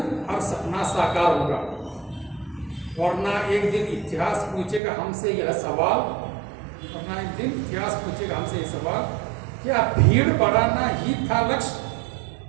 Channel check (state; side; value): drops out; left; at 4.8 s